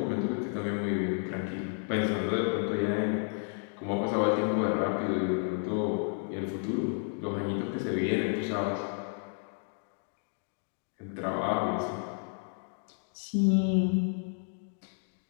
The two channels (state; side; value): silent; right; 57 dB below the other